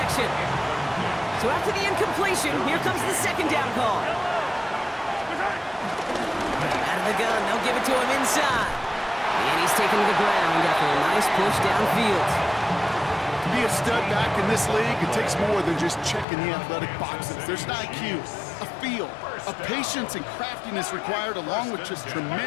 So after the incompletion, here comes the 2nd down call. Out of the gun, they'll give it to him inside. And he's taken to the ground after a nice push downfield. To be a stud back in this league, it takes more than just checking the athletic boxes. There's an IQ, a feel, a patience and craftiness required, along with just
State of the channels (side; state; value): right; drops out; at 16.2 s